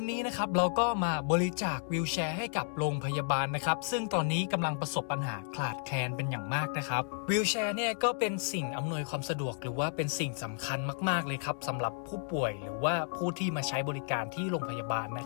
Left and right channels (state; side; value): silent; right; digital silence